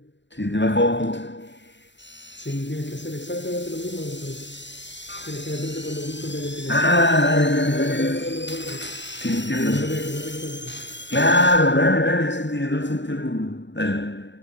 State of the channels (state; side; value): late; right; 0.52 ms